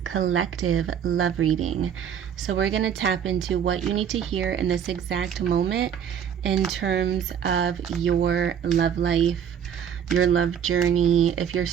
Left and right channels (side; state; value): left; quieter; 8.5 dB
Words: Collective love reading. So we're going to tap into what you need to hear in this exact moment in terms of your love life, your love journey. If you're